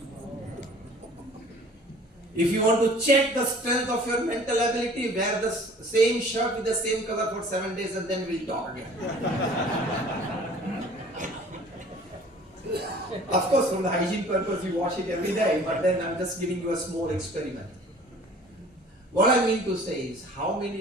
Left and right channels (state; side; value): normal; both; correlation 0.49